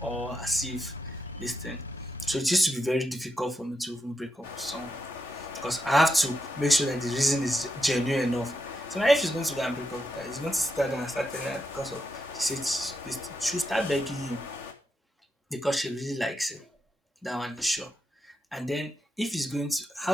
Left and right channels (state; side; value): normal; both; correlation 0.84